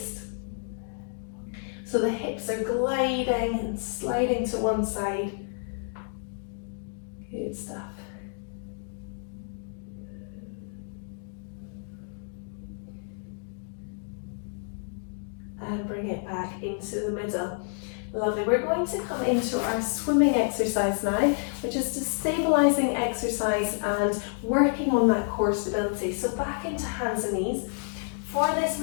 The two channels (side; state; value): right; silent; 58 dB below the other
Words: So the hips are gliding and sliding to one side. Good stuff. And bring it back into the middle. Lovely. We're going to come into our swimming exercise now, which is a stabilising exercise and working on that core stability. So back into hands and knees. For this